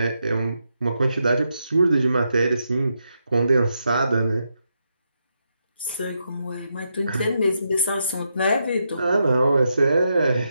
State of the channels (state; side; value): inverted; both; correlation -0.83